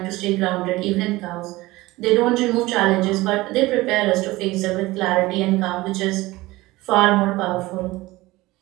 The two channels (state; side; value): quieter; left; 19.6 dB